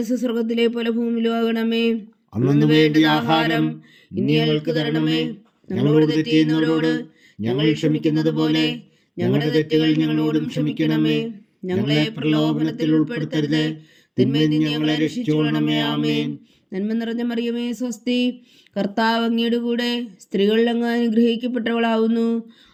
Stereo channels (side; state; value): both; identical; correlation 1.00